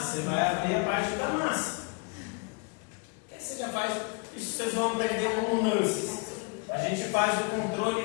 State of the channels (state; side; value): quieter; right; 31.0 dB